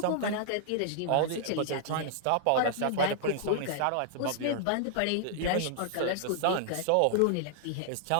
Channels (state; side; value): different; both; correlation -0.01